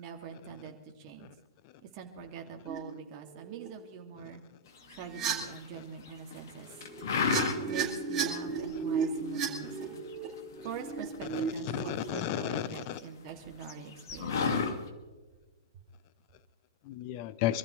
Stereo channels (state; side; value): normal; both; correlation -0.05